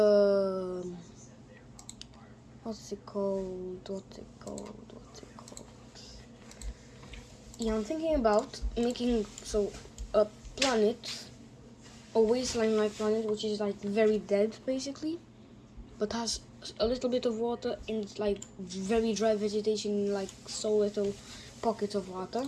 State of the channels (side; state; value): both; identical; correlation 1.00